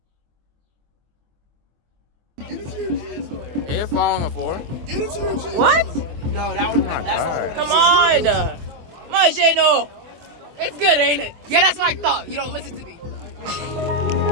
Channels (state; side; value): late; left; 24 ms